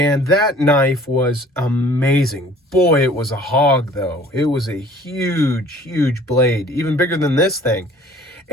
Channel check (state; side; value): normal; both; correlation 0.52